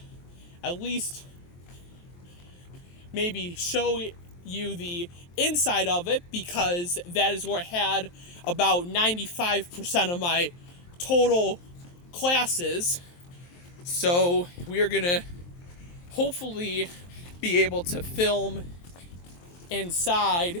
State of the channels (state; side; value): late; right; 23 ms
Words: at least maybe show you the inside of it, because that is where I had about 95% of my total classes. So we are gonna hopefully be able to film